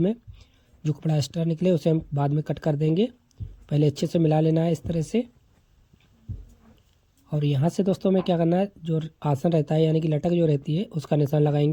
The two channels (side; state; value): both; identical; correlation 1.00